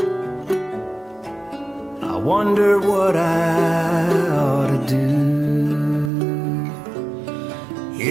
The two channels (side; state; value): left; drops out; at 6.1 s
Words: I wonder what I ought to do.